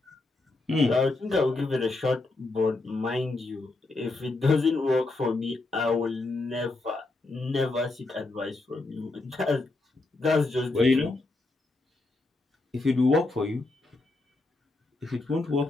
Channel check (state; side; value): quieter; right; 3.1 dB